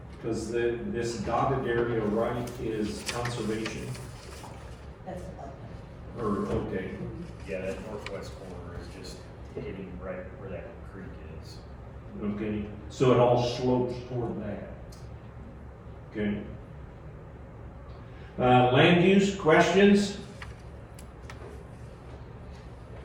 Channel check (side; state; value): both; identical; correlation 1.00